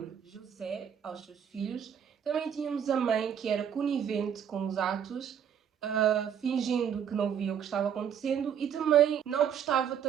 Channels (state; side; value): quieter; left; 8.4 dB